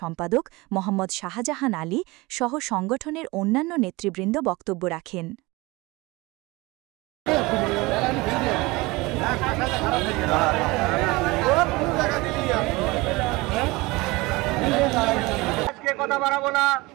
সম্পাদক মোহাম্মদ শাহজাহান আলী সহ সংগঠনের অন্যান্য নেতৃবৃন্দ বক্তব্য রাখেন। কথা বাড়াবো না,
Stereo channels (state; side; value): quieter; left; 22.7 dB